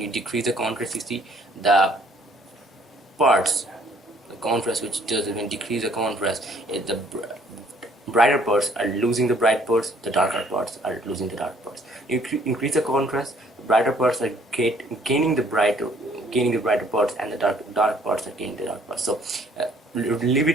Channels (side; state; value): both; normal; correlation 0.61